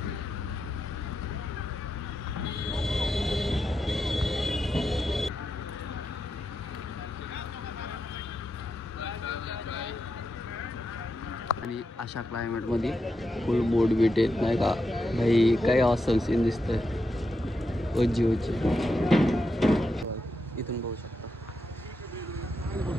आणि अशा क्लायमेटमध्ये फुल बोर्ड बीट येत नाही का भाई. काय ऑसम सीन दिसतंय. ओजी ओजी इथून बघू शकता.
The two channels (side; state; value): both; normal; correlation 0.86